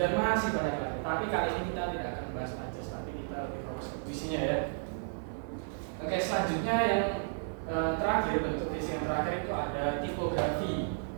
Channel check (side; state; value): left; silent; digital silence